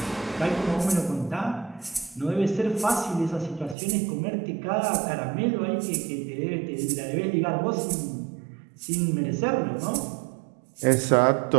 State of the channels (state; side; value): drops out; left; at 3.8 s